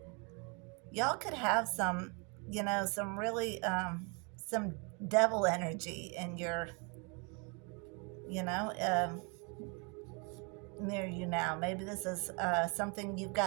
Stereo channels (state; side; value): quieter; left; 33.0 dB